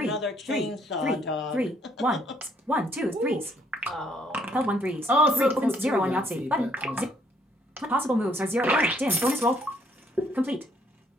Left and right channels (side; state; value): both; normal; correlation 0.67